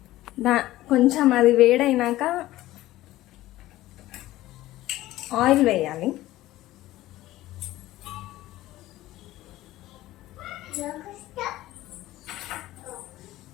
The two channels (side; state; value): right; quieter; 16.0 dB